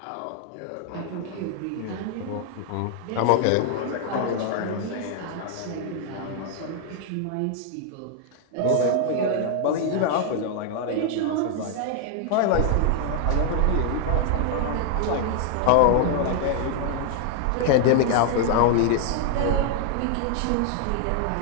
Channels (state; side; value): different; both; correlation 0.00